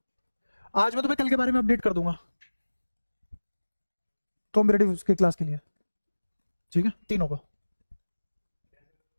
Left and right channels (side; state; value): both; inverted; correlation -1.00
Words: आज मैं तुम्हें कल के बारे में अपडेट कर दूंगा कॉम्पिटेटिव के क्लास के लिए। ठीक है, तीनों को।